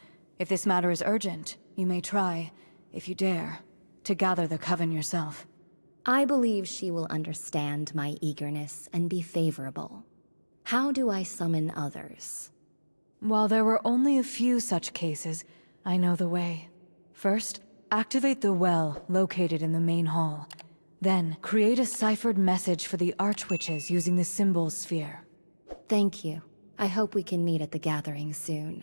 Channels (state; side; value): inverted; both; correlation -1.00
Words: If this matter is urgent, you may try, if you dare, to gather the coven yourself. I believe she will understand my eagerness and be favorable. How do I summon others? While there were only a few such cases, I know the way. First, activate the well located in the main hall. Then, create a ciphered message for the Archwitches using the symbol sphere. Thank you. I hope we can meet at the gathering